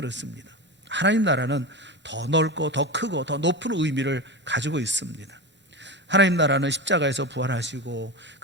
하나님 나라는 더 넓고 더 크고 더 높은 의미를 가지고 있습니다. 하나님 나라는 십자가에서 부활하시고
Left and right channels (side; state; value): both; normal; correlation 0.22